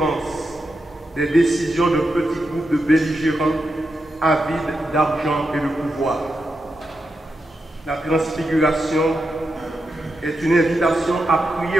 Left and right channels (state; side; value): normal; both; correlation 0.87